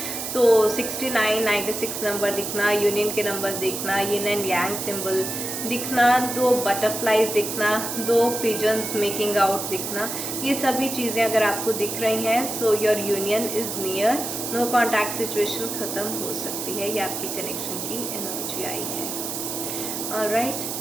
तो 69, 96 नंबर दिखना, यूनियन के नंबर्स दिखना, यिन एंड यांग सिंबल दिखना, 2 बटरफ्लाइज दिखना, 2 पिजन्स मेकिंग आउट दिखना, ये सभी चीज़ें अगर आपको दिख रही हैं, so your union is near, no contact situation ख़त्म हो सकती है, ये आपकी कनेक्शन की एनर्जी आई है। ऑलराइट,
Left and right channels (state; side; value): noise; right; hiss, 5 dB below the sound